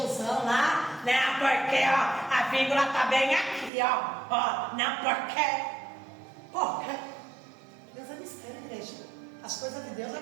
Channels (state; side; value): drops out; left; at 3.7 s